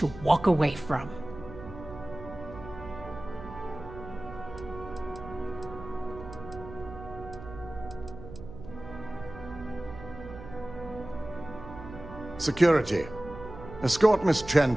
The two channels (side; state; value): right; noise; hum, 13 dB below the sound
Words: walk away from. Security, escort Miss Chen